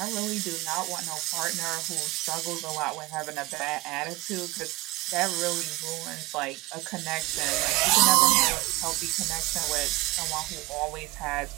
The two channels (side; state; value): left; quieter; 21.1 dB